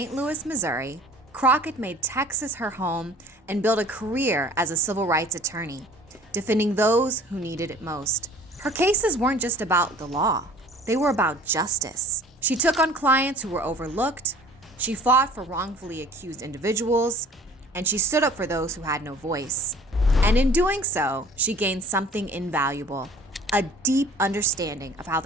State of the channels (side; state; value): both; normal; correlation 0.49